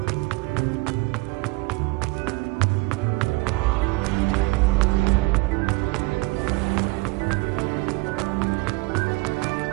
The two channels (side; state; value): left; quieter; 24.3 dB